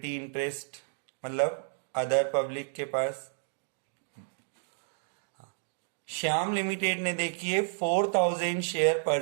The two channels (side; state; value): left; silent; digital silence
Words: इंटरेस्ट मतलब अदर पब्लिक के पास। श्याम लिमिटेड ने देखिए 4,000 शेयर